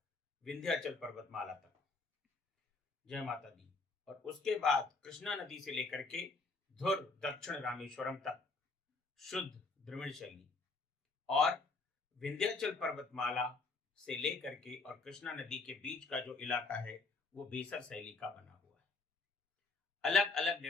विंध्याचल पर्वतमाला तक, जय माता दी, और उसके बाद कृष्णा नदी से लेकर के धुर दक्षिण रामेश्वरम तक शुद्ध द्रविड़ शैली, और विंध्याचल पर्वतमाला से लेकर के और कृष्णा नदी के बीच का जो इलाका है वो बेसर शैली का बना हुआ है। अलग अलग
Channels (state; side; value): quieter; right; 3.9 dB